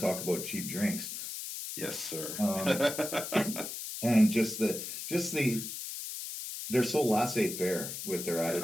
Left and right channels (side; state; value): left; noise; hiss, 7 dB below the sound